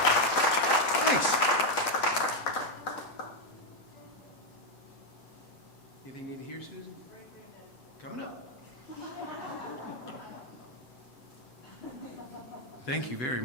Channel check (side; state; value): right; late; 7.8 ms